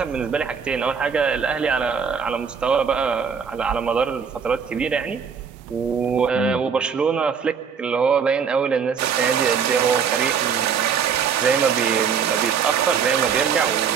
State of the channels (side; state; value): left; quieter; 6.6 dB